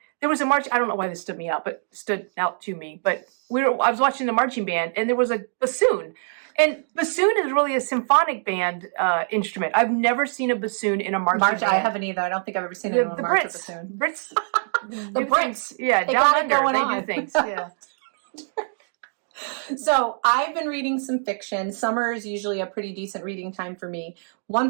was a march. I don't know why this stood out to me, but I was watching the marching band, and there was a bassoon. And bassoon is really a symphonic band instrument. I've never seen a bassoon in a marching band. I haven't either. I don't think I've ever seen anyone march a bassoon. Brits. The Brits. Yeah, they down got under, it going they on. do things. Yeah. So I've been reading some fiction. Summer is usually a pretty decent reading time for me. One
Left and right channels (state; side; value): silent; left; digital silence